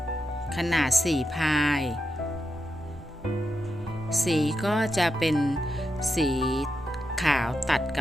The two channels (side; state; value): both; normal; correlation 0.86